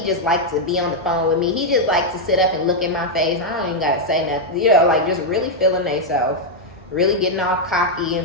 just likes to be on the phone with me. He just likes to sit up and look in my face. I don't even gotta say nothing. You know, like just really feeling themselves, really getting all cocky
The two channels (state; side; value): normal; both; correlation -0.01